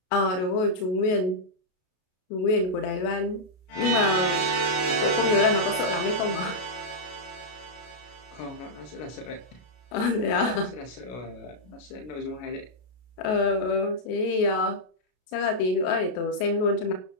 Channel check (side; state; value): right; late; 33 ms